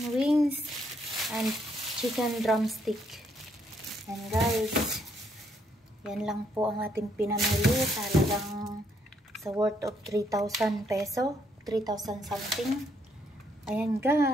wings and chicken drumstick. And guys, yan lang po ang ating pinamili. Talagang sa worth of 3,000 peso. 3,000 something. Ayan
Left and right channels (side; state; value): both; normal; correlation 0.72